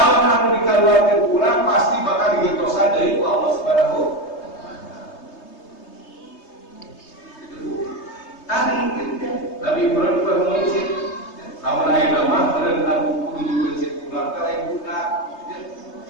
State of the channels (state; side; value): late; right; 3.2 ms